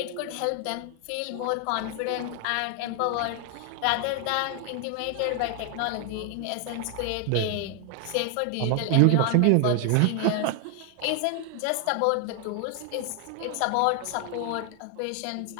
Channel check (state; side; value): different; both; correlation 0.01